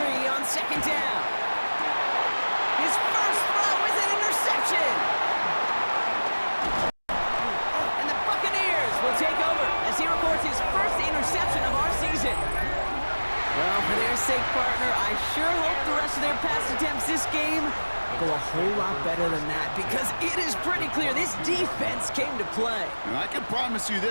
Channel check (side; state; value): both; inverted; correlation -1.00